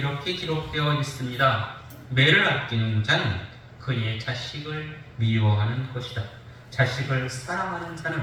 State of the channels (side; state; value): both; identical; correlation 1.00